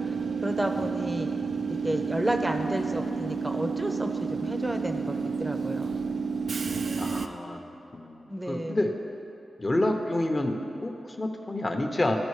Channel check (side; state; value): both; normal; correlation 0.91